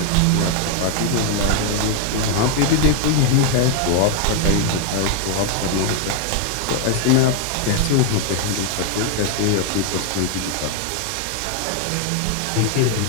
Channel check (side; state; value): both; different; correlation 0.00